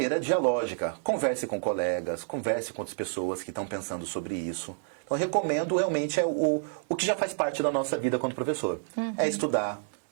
dialógica, converse com colegas, converse com outras pessoas que estão pensando sobre isso. Então, eu recomendo realmente o que já faz parte da nossa vida quanto professor. É estudar,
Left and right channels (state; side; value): silent; left; digital silence